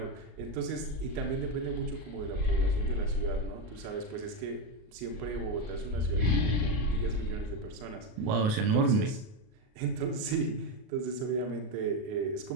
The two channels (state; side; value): late; left; 38 ms